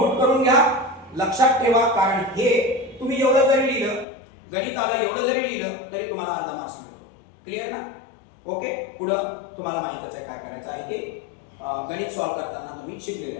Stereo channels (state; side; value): drops out; right; at 4.0 s